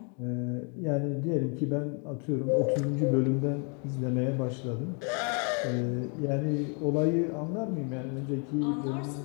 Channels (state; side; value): quieter; right; 37.9 dB